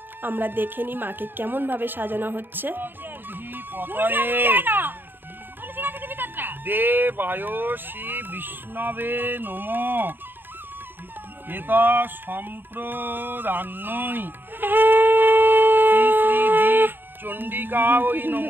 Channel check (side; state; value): left; late; 0.095 ms